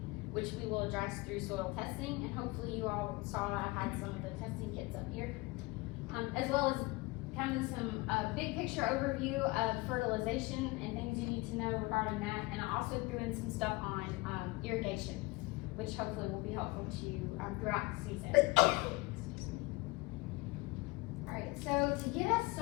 which we will address through soil testing, and hopefully you all saw I had some of the testing kits up here, as well as kind of some big picture overview of fertilization and things you need to know regarding that, and I also threw in some stuff on irrigation, which hopefully will be helpful to you throughout the season. Alright, so to get us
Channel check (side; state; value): right; quieter; 23.1 dB